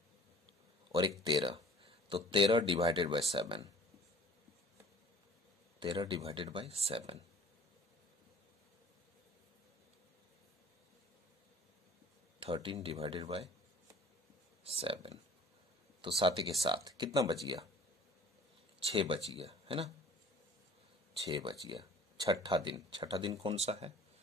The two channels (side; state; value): both; normal; correlation 0.49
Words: और 1 13, तो 13 divided by 7, 13 divided by 7, 13 divided by 7, तो 7 के 7 कितना बच गया 6 बच गया, है ना, 6 बच गया। छठा दिन कौन सा है